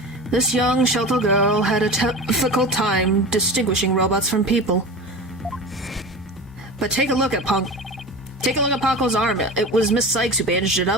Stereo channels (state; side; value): normal; both; correlation 0.30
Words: This young, sheltered girl had a difficult time distinguishing robots from people. But take a look at Ponko's arm. It was Miss Sykes who bandaged it